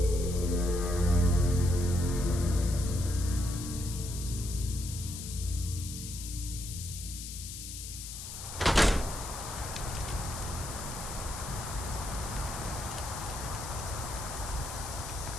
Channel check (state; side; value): noise; left; hiss, 9 dB below the sound